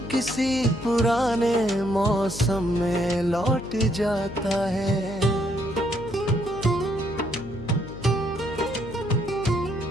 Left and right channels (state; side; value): noise; left; hum, 13 dB below the sound